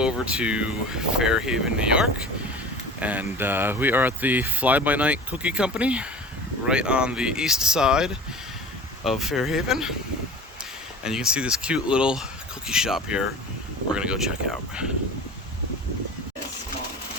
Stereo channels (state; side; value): normal; both; correlation 0.38